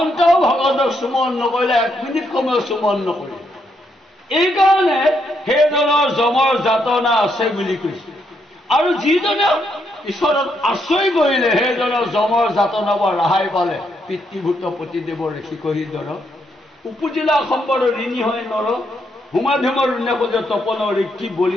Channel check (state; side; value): normal; both; correlation 0.77